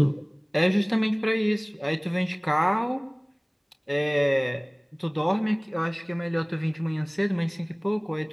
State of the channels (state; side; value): identical; both; correlation 1.00